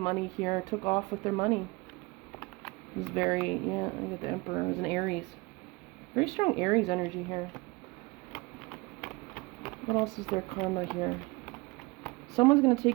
here. Took off with their money. It was very, yeah, I got the Emperor. It was an Aries. Very strong Aries energy here. What else is their karma here? Someone's going to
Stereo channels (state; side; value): quieter; left; 25.0 dB